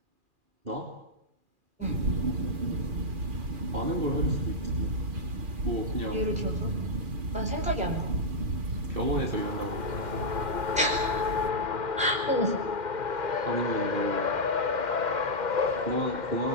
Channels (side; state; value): left; late; 2.4 ms